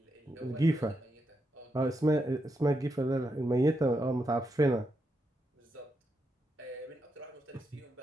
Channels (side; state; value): both; normal; correlation 0.83